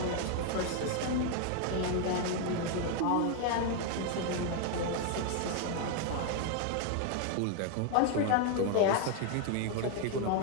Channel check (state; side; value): different; both; correlation 0.01